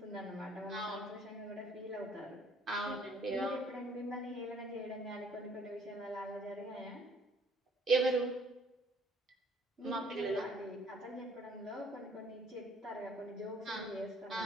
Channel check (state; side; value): normal; both; correlation 0.60